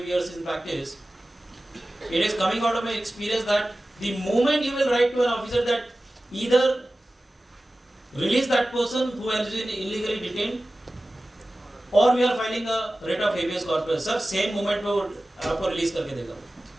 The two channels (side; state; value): both; normal; correlation 0.96